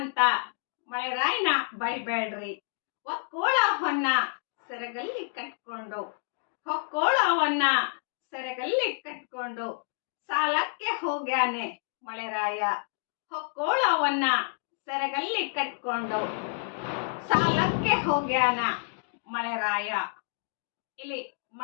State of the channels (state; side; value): silent; right; 59 dB below the other